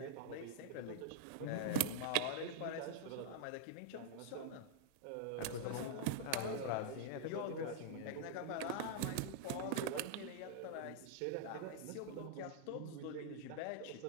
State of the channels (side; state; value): both; different; correlation -0.01